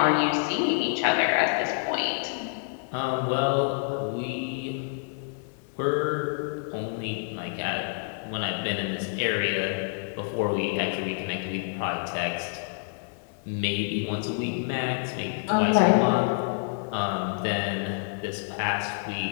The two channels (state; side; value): silent; right; digital silence